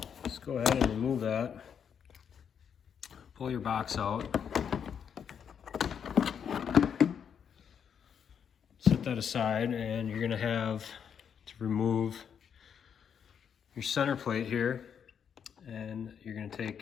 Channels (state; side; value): quieter; right; 7.7 dB